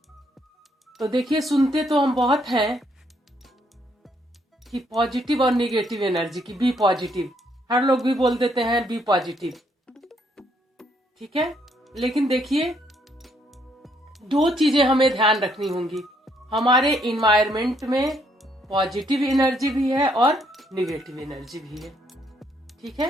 तो देखिए, सुनते तो हम बहुत हैं कि पॉजिटिव और निगेटिव एनर्जी की, बी पॉजिटिव। हर लोग भी बोल देते हैं बी पॉजिटिव, ठीक है। लेकिन देखिए, दो चीजें हमें ध्यान रखनी होंगी। हमारे इन्वायरमेंट में पॉजिटिव एनर्जी भी है और निगेटिव एनर्जी भी है, ठीक है।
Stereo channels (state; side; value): normal; both; correlation 0.70